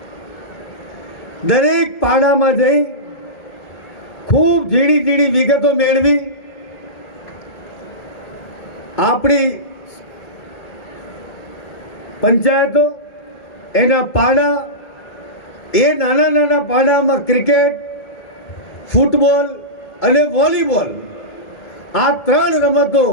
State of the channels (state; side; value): late; right; 1.8 ms